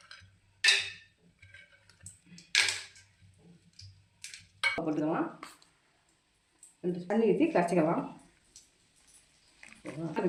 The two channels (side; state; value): both; identical; correlation 1.00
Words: போட்டுக்கலாம், 2 தண்ணி ஊற்றி கரைச்சிக்கலாம்.